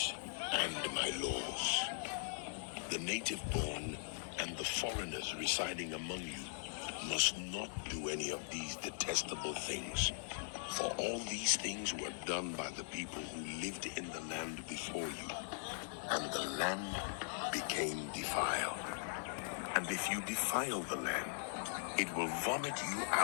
and my laws. The native born and the foreigners residing among you must not do any of these detestable things, for all these things were done by the people who lived in the land before you, and the land became defiled. And if you defile the land, it will vomit you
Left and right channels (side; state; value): right; silent; digital silence